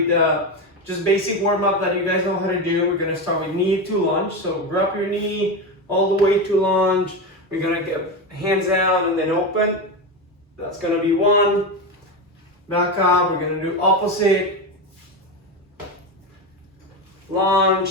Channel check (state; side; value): normal; both; correlation 0.17